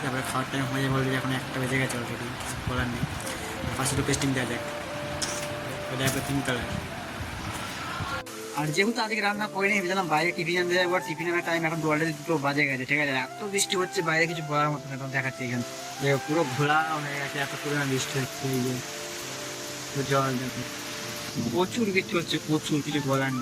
তারপরে খাওয়ার টাইম হয়ে যাবে অলরেডি এখন একটা বেজে গেছে অলরেডি কিছু বলার নেই ফার্স্ট একটু টেস্টিং দেওয়া যাক ওটা একটা 3 কালার। আর যেহেতু আজকে রান্না করিনি ভেবেছিলাম বাইরে টিফিন আনতে যাবো টিফিন আনার টাইম এখন অলরেডি 2 বাজে গেছে ঠিক আছে এত বৃষ্টি হচ্ছে বাইরে কিছু বলার মতো না দেখাচ্ছি এখানে যে পুরো ঘোলা হয়ে গেছে এত পরিমাণ বৃষ্টি হচ্ছে এই যে জল দেখো প্রচুর বৃষ্টি হচ্ছে প্রচুর কিছু বলার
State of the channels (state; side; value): identical; both; correlation 1.00